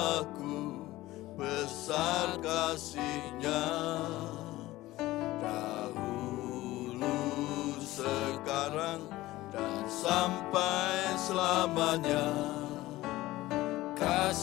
besar kasih-Nya. Sekarang dan sampai selamanya,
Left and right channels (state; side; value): quieter; right; 17.4 dB